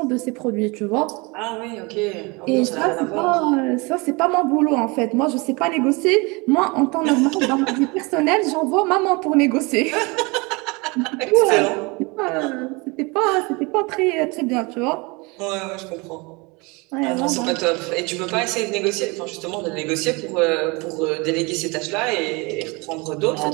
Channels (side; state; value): left; quieter; 27.2 dB